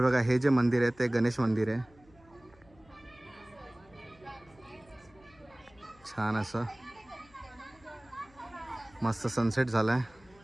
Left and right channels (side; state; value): left; noise; hum, 28 dB below the sound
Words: बघा, हे जे मंदिर आहे ते गणेश मंदिर आहे. छान असं मस्त सनसेट झालाय.